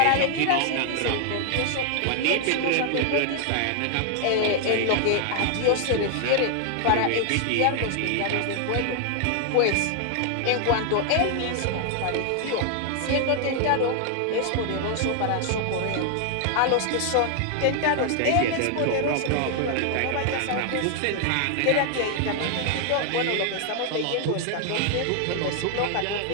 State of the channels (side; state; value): both; different; correlation 0.00